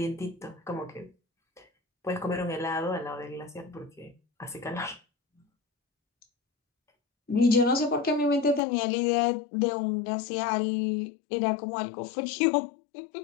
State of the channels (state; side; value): drops out; right; at 8.6 s